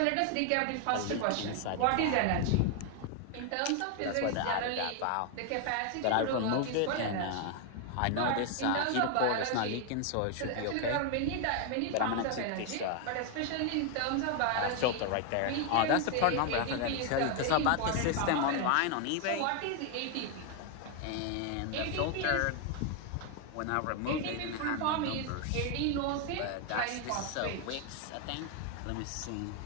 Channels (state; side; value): different; both; correlation 0.00